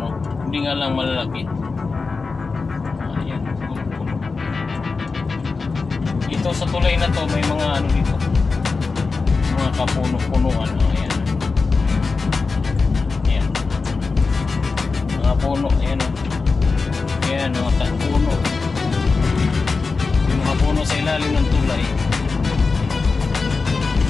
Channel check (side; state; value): right; quieter; 4.3 dB